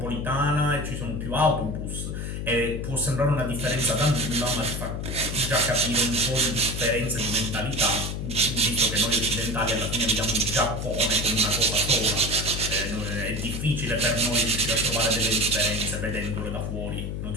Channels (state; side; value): noise; left; hum, 4 dB below the sound